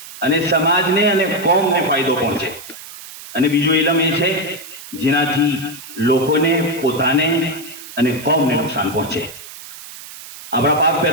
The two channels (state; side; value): noise; right; hiss, 15 dB below the sound